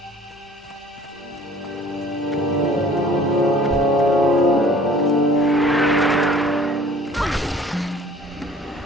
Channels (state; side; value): normal; both; correlation 0.51